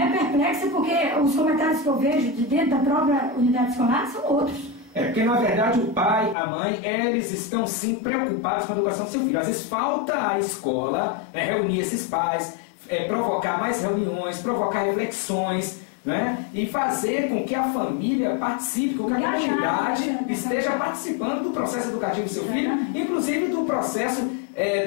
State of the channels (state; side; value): drops out; right; at 6.4 s